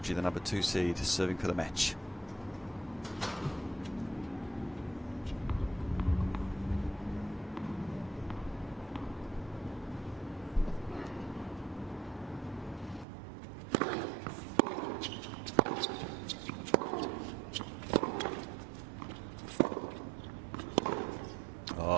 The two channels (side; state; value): left; drops out; at 13.1 s